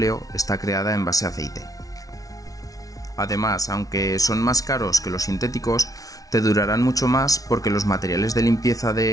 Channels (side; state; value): right; late; 0.18 ms